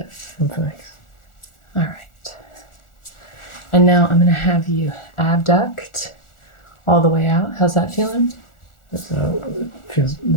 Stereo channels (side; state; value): right; late; 1.4 ms